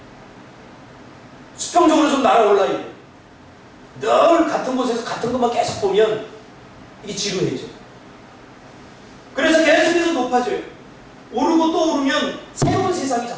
수평적으로 좀 날아올라야 돼요. 늘 같은 곳에서 같은 것만 계속 보면 이게 지루해져. 그래서 계속해서 높아져요. 오르고 또 오르면 새로운 세상이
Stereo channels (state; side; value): identical; both; correlation 1.00